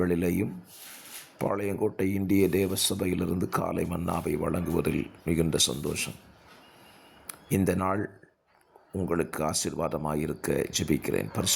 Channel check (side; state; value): both; identical; correlation 1.00